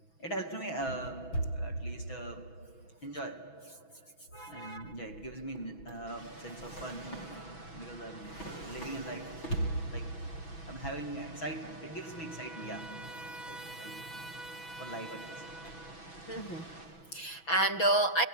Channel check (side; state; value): right; late; 6.1 ms